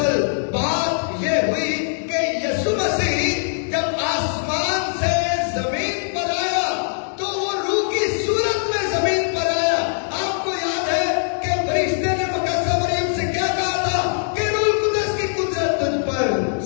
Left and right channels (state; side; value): silent; right; digital silence